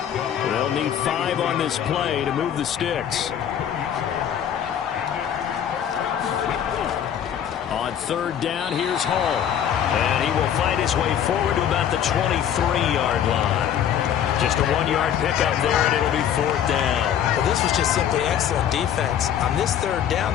They'll need 5 on this play to move the sticks. On 3rd down, here's Hall. And he will find his way forward to about the 23-yard line. Just a 1-yard pickup there, and it'll be 4th down. Well, this was just simply excellent defense. On this 3rd down,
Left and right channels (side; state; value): right; quieter; 9.5 dB